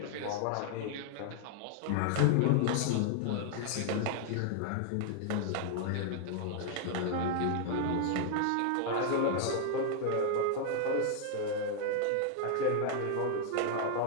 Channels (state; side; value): different; both; correlation 0.00